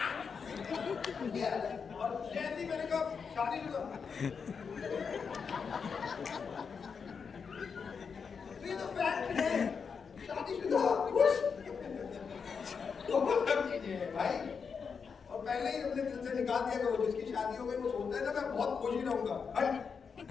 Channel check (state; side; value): quieter; right; 5.9 dB